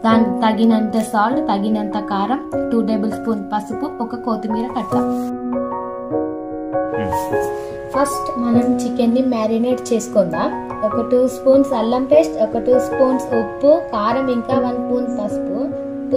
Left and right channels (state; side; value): identical; both; correlation 1.00